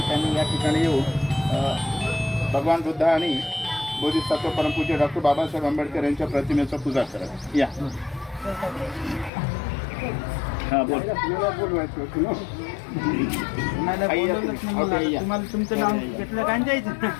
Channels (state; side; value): drops out; right; at 9.3 s